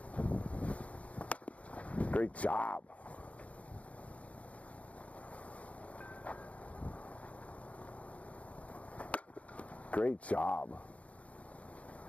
Great job. Great job.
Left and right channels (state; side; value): late; right; 0.067 ms